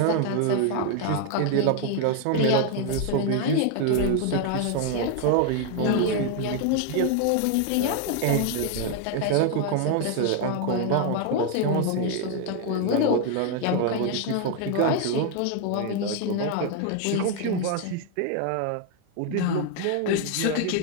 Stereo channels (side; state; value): both; different; correlation 0.00